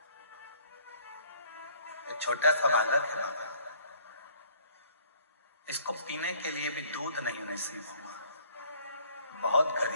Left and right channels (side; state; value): both; inverted; correlation -0.57